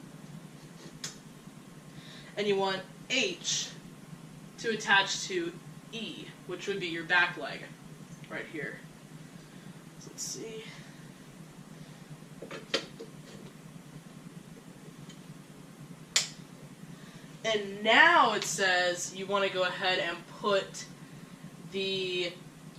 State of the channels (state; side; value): identical; both; correlation 1.00